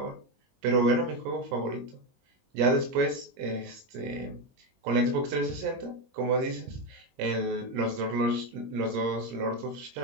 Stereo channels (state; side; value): late; left; 21 ms